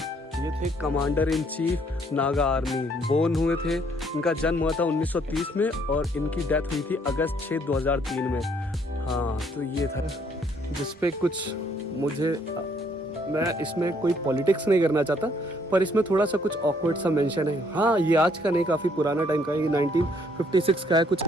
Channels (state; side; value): normal; both; correlation 0.66